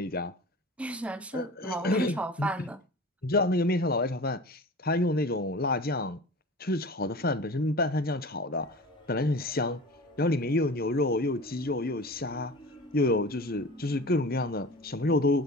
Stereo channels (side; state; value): both; normal; correlation 0.36